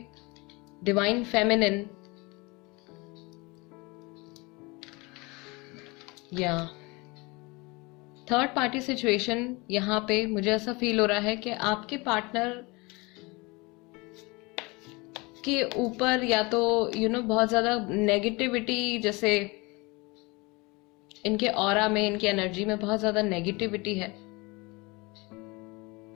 डिवाइन फेमिनिन, या थर्ड पार्टी सिचुएशन। यहाँ पे मुझे ऐसा फील हो रहा है कि आपके पार्टनर के ऊपर या तो बहुत ज्यादा नेगेटिविटी, जैसे इनके ऑरा में, इनकी एनर्जी में बहुत ज्यादा नेगेटिविटी है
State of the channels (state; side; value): quieter; right; 25.8 dB